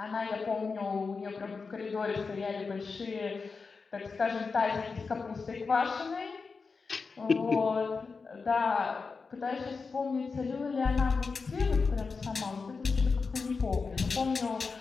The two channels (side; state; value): right; quieter; 4.7 dB